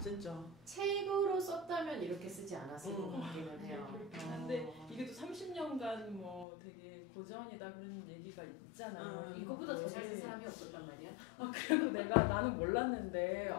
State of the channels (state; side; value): drops out; right; at 6.5 s